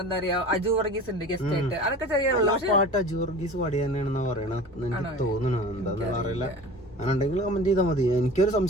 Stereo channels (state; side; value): normal; both; correlation 0.39